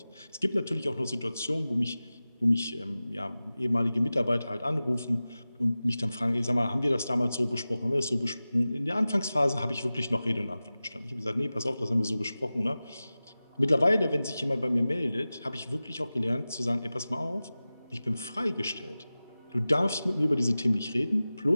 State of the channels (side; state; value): both; inverted; correlation -0.96